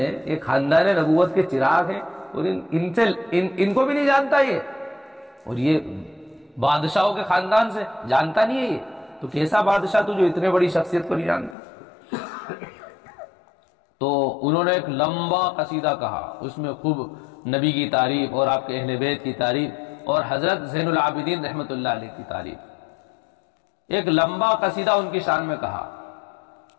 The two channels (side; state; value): right; drops out; at 11.6 s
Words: یہ خاندان نبوت کے چراغ ہیں، اور ان کو بھی نہیں جانتا یہ، اور یہ بادشاہوں کے خاندان سے جانتا نہیں ہے یہ، تو کیسا بادشاہ تو جو اتنے بڑی شخصیت کو نہیں جانتا۔ تو انہوں نے ایک لمبا قصیدہ کہا، اس میں خوب نبی کی تعریف اور آپ کے اہل بیت کی تعریف اور حضرت زین العابدین رحمۃ اللہ علیہ کی تعریف، ایک لمبا قصیدہ ان کی شان میں کہا،